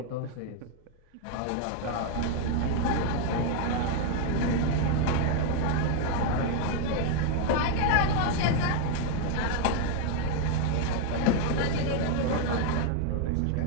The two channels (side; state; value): both; different; correlation 0.00